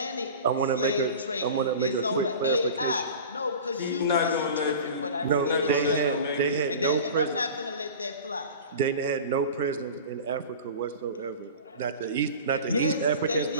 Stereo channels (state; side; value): inverted; both; correlation -0.36